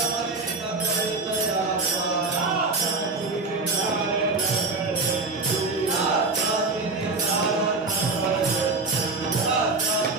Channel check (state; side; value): quieter; left; 3.7 dB